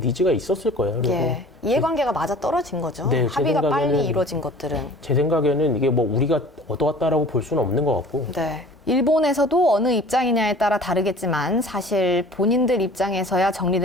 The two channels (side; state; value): both; normal; correlation 0.46